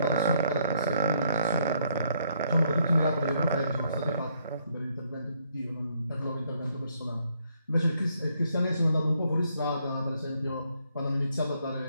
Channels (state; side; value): inverted; both; correlation -0.70